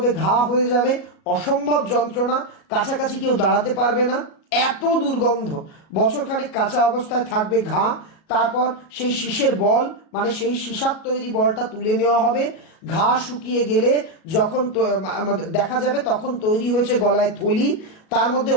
ঘা হয়ে যাবে, অসম্ভব যন্ত্রণা, কাছাকাছি কেউ দাঁড়াতে পারবে না, এত দুর্গন্ধ। বছরখানেক কাঁচা অবস্থায় থাকবে ঘা। তারপর সেই শীষের বল মানে সেই সীসার তৈরি বলটা তুলে নেওয়া হবে। ঘা শুকিয়ে গেলে যখন দেখা যাবে তখন তৈরি হয়েছে গলায় থলি। তার মধ্যে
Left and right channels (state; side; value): late; right; 37 ms